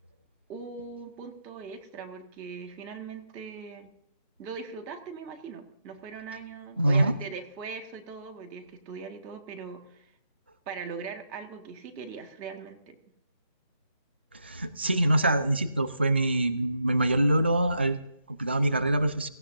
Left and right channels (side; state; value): both; inverted; correlation -0.81